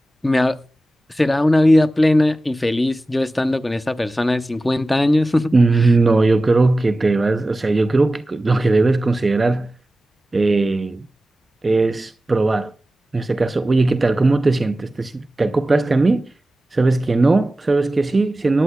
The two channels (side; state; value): both; normal; correlation 0.95